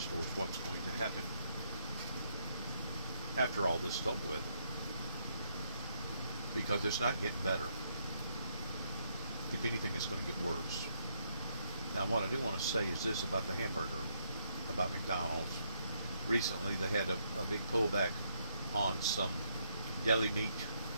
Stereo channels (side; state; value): both; inverted; correlation -0.75